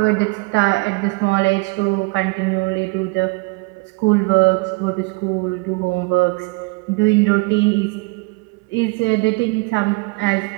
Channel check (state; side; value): quieter; left; 26.3 dB